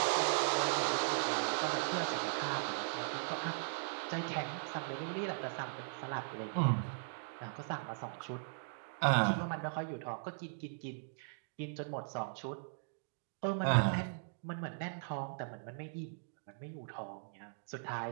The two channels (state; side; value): silent; left; digital silence